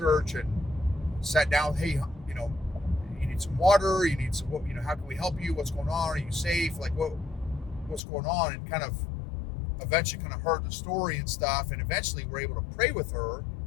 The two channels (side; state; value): right; drops out; at 8.0 s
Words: and sat down. Hey, you need some water, you need some, how can we help you, what's going on, are you safe, like what's going on, and kind of eventually kind of heard the story and stuff, and eventually we're able to pray with her